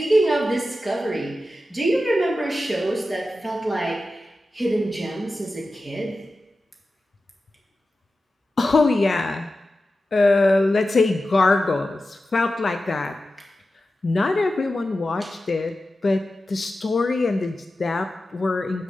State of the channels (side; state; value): both; normal; correlation 0.93